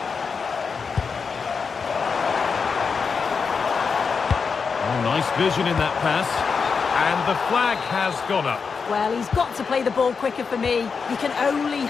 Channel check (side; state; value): right; quieter; 5.5 dB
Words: Nice vision in that pass. And the flag has gone up. Well, he's got to play the ball quicker for me. You can only